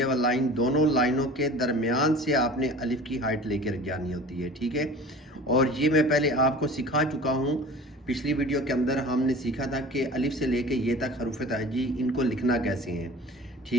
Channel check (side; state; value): both; normal; correlation 0.41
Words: वाली लाइन, दोनों लाइनों के दरमियान से आपने अलिफ की हाइट लेकर जानी होती है। ठीक है, और ये मैं पहले आपको सिखा चुका हूँ। पिछली वीडियो के अंदर हमने सीखा था कि अलिफ से लेके ये तक हरूफ तहजी इनको लिखना कैसे हैं।